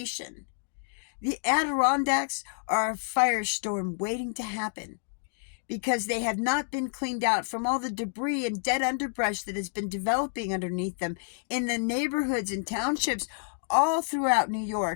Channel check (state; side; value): silent; right; digital silence